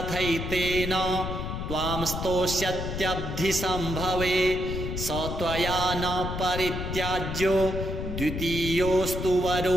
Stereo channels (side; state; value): left; noise; rumble, 5 dB below the sound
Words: त्वां स्तोष्यत्यब्धिसम्भवे स त्वया न परित्याज्यो द्वितीयोऽस्तु